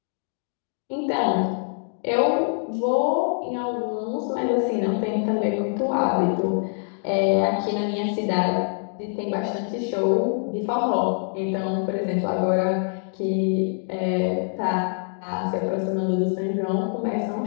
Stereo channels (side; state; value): right; silent; 62 dB below the other